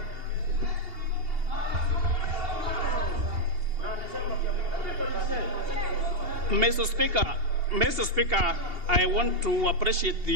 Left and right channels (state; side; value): late; left; 2.8 ms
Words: Mr. Speaker, I want to appreciate